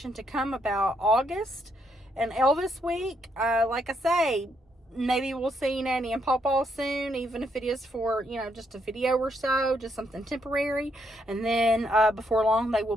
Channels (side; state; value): both; normal; correlation 0.75